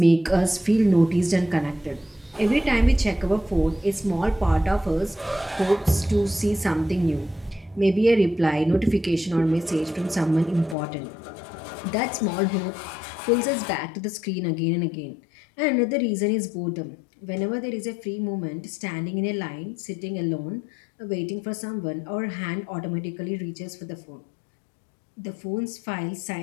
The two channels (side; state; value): right; drops out; at 10.8 s